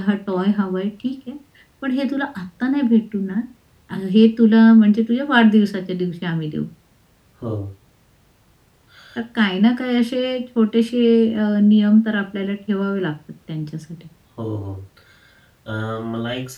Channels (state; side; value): identical; both; correlation 1.00